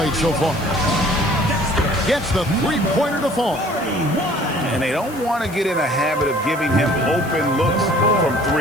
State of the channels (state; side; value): noise; left; hiss, 18 dB below the sound